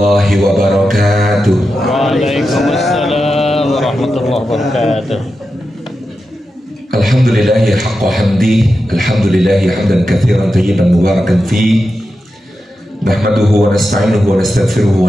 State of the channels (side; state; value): both; normal; correlation 0.90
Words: wabarakatuh. Waalaikumsalam warahmatullahi wabarakatuh. Alhamdulillahi haqqa hamdi, alhamdulillahi hamdan katsiran tayyiban mubarakan fi. Nahmaduhu wa nasta'inuhu wa nastaghfiruhu